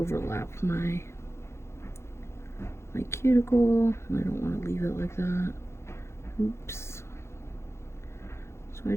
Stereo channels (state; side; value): late; right; 0.13 ms